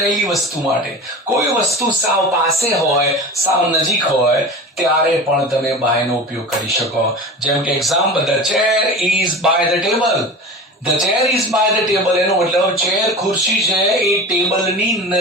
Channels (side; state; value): both; normal; correlation 0.32